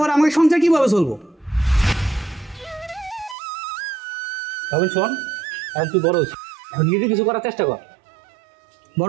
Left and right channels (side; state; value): left; drops out; at 3.4 s